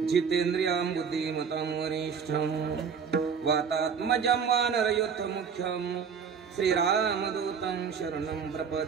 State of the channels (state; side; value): quieter; left; 6.5 dB